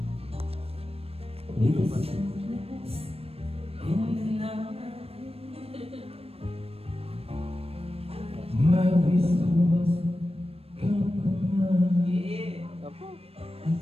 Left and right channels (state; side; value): late; left; 0.28 ms